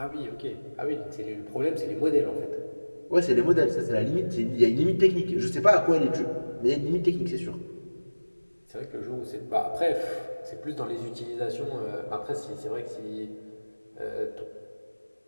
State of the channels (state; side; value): inverted; both; correlation -1.00